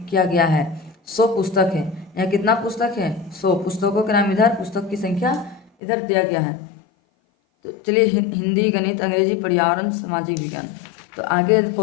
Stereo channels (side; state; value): right; drops out; at 5.7 s